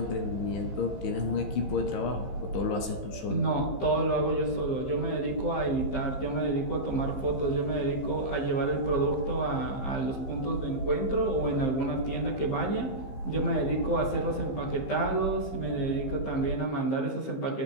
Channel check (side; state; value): right; late; 15 ms